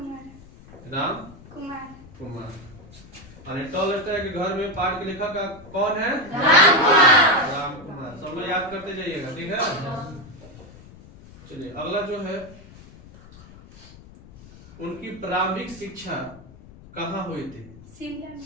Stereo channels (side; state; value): left; noise; rumble, 20 dB below the sound